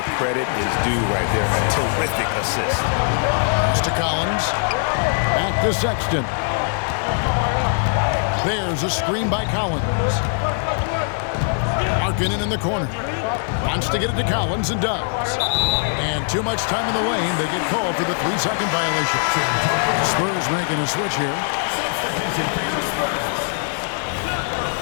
credit is due right there. A terrific assist. Pass to Collins. Back to Sexton. There's a screen by Collins. Markkanen in the corner. Wants to get it to Collins and does. And too much time in the lane. They get called for the 3-second violation. Spurs making a switch here. Substitution for the Spurs. Number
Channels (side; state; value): right; silent; 65 dB below the other